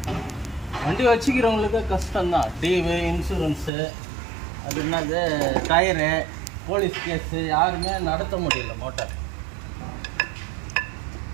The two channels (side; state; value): left; drops out; at 3.7 s